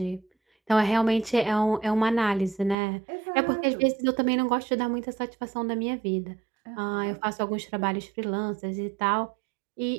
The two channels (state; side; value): drops out; left; at 2.8 s